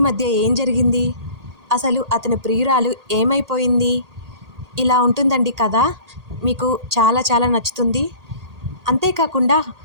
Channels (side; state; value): left; late; 1.8 ms